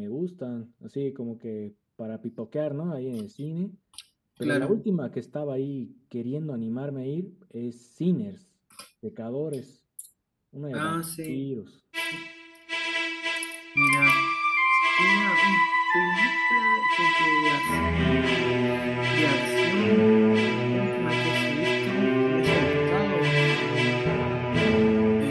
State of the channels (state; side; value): identical; both; correlation 1.00